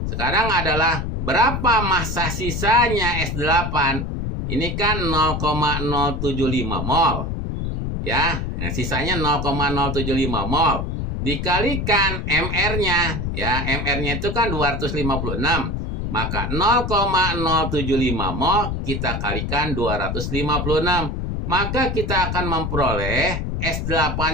Sekarang adalah berapa massa sisanya S8? Ini kan 0,075 mol. Ya, nah, sisanya 0,075 mol. Dikalikan MR-nya, ya, MR-nya itu kan 256. Maka 0,075 mol kita kalikan 256. Maka kita akan memperoleh S8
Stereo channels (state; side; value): noise; left; rumble, 2 dB below the sound